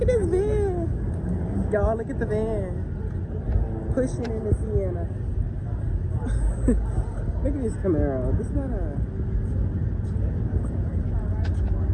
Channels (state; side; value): identical; both; correlation 1.00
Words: at this van. Y'all, look at the van. Pushing in the Sienna. Look at this Camaro. This not